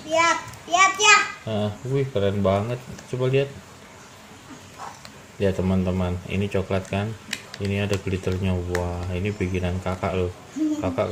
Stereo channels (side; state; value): both; identical; correlation 1.00